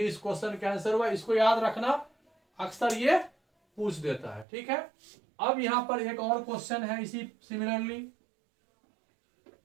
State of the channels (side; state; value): left; drops out; at 4.5 s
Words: क्वेश्चन का आंसर हुआ। इसको याद रखना, अक्सर ये पूछ देता है, ठीक है। अब यहां पर एक और क्वेश्चन है इसी सिमिलरली।